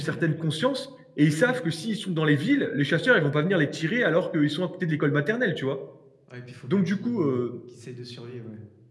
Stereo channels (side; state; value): both; identical; correlation 1.00